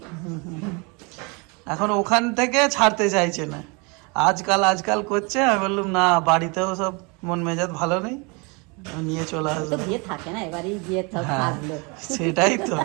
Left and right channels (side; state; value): left; quieter; 30.3 dB